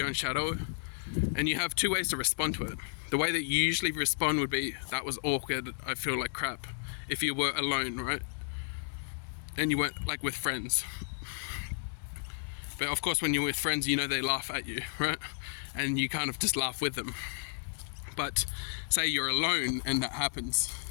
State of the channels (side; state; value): right; silent; 56 dB below the other